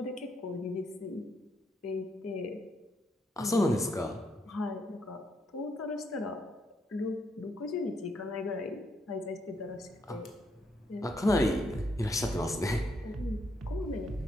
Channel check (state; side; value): normal; both; correlation 0.76